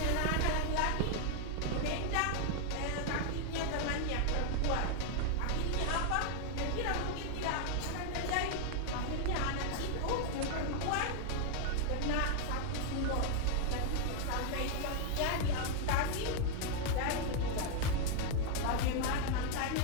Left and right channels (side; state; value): both; different; correlation 0.00